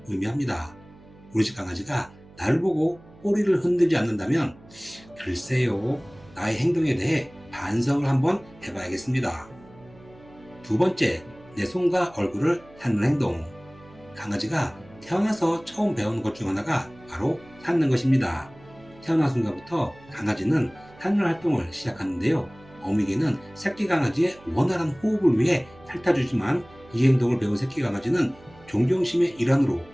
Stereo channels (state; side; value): noise; right; hum, 24 dB below the sound